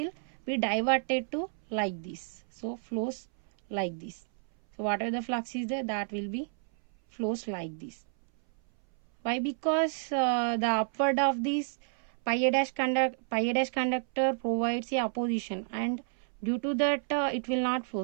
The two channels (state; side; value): silent; left; 57 dB below the other